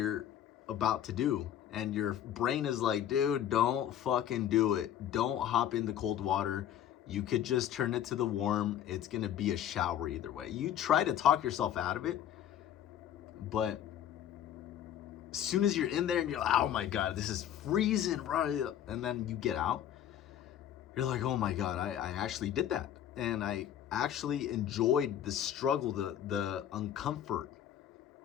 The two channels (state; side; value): quieter; right; 10.5 dB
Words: about to do. And your brain is like, dude, don't fucking do it. Don't hop in the cold water. You could just turn it to the warm. It's gonna be a shower either way. You try to talk yourself out of it, but as soon as you're in there and you're like, oh my God, this is freezing, right? And then you get out, you're like, oh my God, I actually did that. And I actually enjoyed the struggle, the uncomfort.